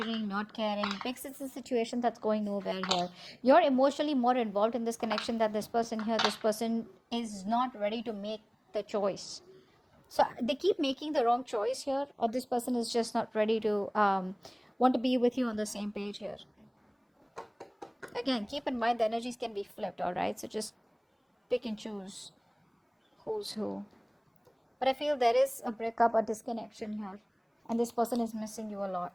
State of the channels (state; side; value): identical; both; correlation 1.00